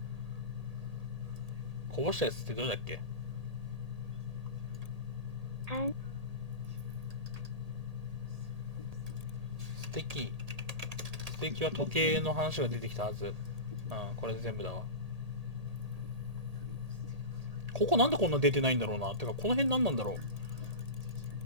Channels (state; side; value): late; left; 1.8 ms